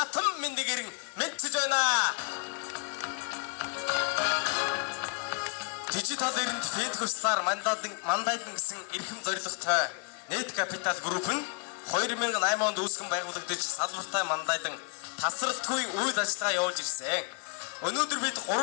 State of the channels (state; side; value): quieter; right; 36.9 dB